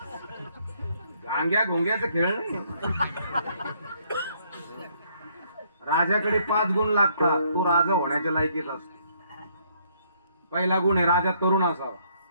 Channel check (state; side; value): inverted; both; correlation -0.68